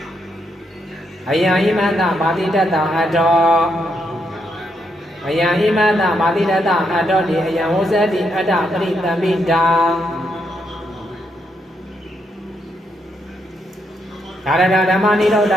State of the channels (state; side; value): normal; both; correlation 0.78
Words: အယံဣမတပါတိတတအတ္တောအယံဣမတပါတိတတအတ္တောတိအယံဝုစတိအတ္တပရိသမိတာဒါရဓမ္မနိရောဓ